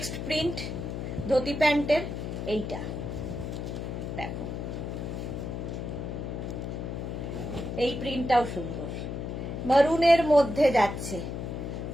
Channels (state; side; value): noise; left; hum, 5 dB below the sound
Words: প্রিন্ট ধুতি প্যান্টের এইটা দেখো, এই প্রিন্টটাও সুন্দর, মারুনের মধ্যে যাচ্ছে।